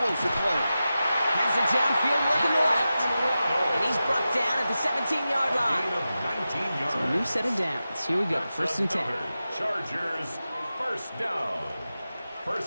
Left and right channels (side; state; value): both; inverted; correlation -0.93